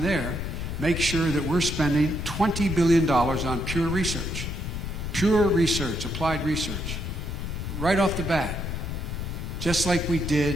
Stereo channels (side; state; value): left; noise; rumble, 4 dB below the sound